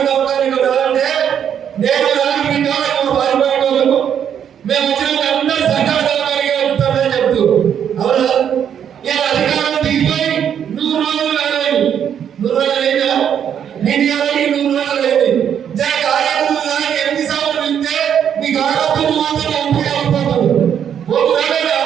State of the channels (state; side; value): quieter; left; 8.7 dB